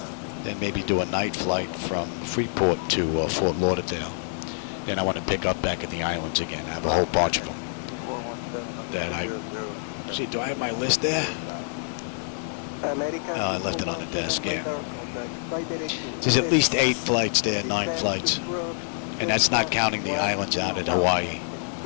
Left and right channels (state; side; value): silent; right; digital silence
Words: Then maybe do a night flight from Freeport to Fort Lauderdale. Then I want to pick up back in the islands again. I have a whole bunch of them that I... See, do I have my list there? Oh, I left it on the desk, yeah. There's at least 8 flights there, 9 flights. And that's not counting the islands out at Hawaii.